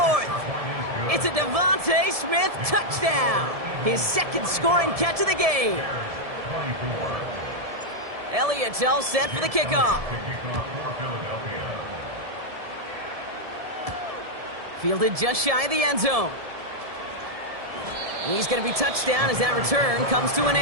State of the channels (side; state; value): left; late; 1.7 ms